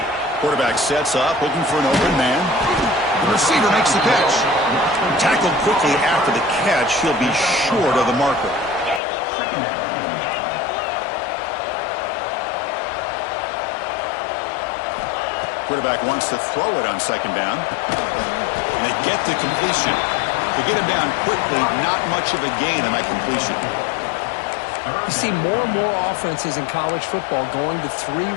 Quarterback sets up, looking for an open man. The receiver makes the catch. Tackled quickly after the catch. He'll be short of the marker. Quarterback wants to throw it on 2nd down. And they get the completion. To get him down quickly, not much of a gain on that completion. You see more and more offenses in college football going to 3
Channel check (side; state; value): right; drops out; at 9.0 s